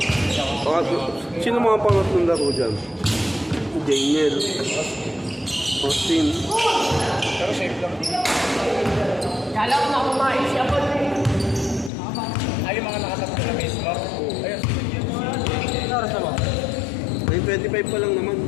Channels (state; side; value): drops out; right; at 11.9 s